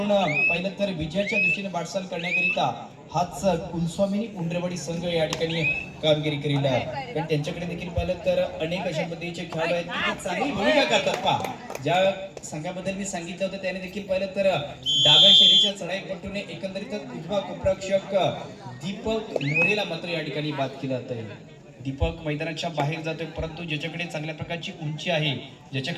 पाहिलं तर विजयाच्या दृष्टीने वाटचाल करण्याकरिता हाच कुलस्वामिनी उंडरवाडी संघ या ठिकाणी कामगिरी करील आहे. पण त्यांच्याकडे देखील पाहिलं तर अनेक अशा पद्धतीचे खेळाडू आहेत की ते चांगली भूमिका करतात. पहा ज्या संघाबद्दल मी सांगितलं होतं त्याने देखील पाहिलं तर डाव्या शैलीच्या चढाईपट्टूने एकंदरीतच उजवा कोपरक्षक दीपक मोरेला मात्र या ठिकाणी बाद केलं जातं. दीपक मैदानाच्या बाहेर जातोय, परंतु ज्याच्याकडे चांगल्या प्रकारची उंची आहे,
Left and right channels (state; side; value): identical; both; correlation 1.00